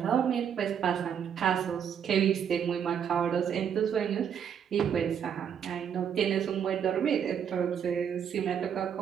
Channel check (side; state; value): left; quieter; 8.2 dB